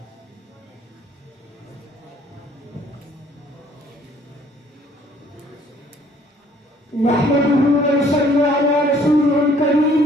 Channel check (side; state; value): both; normal; correlation 0.60